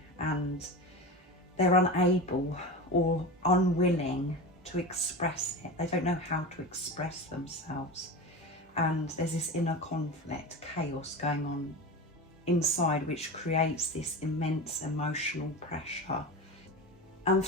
and they're unable or unwilling to express it. They don't know how to express themselves. And there's this inner conflict, chaos going on inside, which creates this immense emotional pressure. And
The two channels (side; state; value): both; normal; correlation 0.26